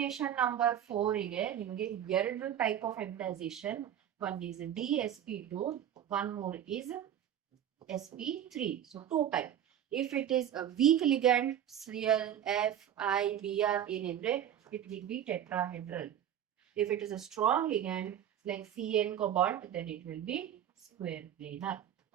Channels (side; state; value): left; quieter; 10.3 dB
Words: number 4 ige nimage ಎರಡು type of hybridization. One is DSP2, one more is SP3. So 2 type. If it is a weak ligand, Cl, F, I, Br ಏನಂದ್ರೆ it will be tetrahedral. If it is a strong ligand like CN cobalt, then it will be square planar.